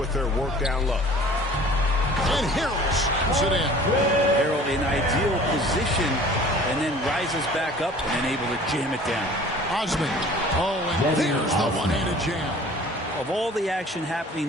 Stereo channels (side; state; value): both; normal; correlation 0.47